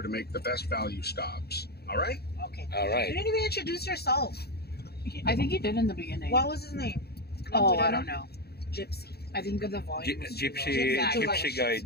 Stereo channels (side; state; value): right; late; 0.46 ms